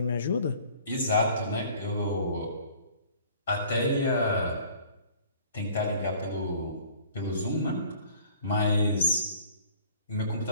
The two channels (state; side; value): inverted; both; correlation -0.51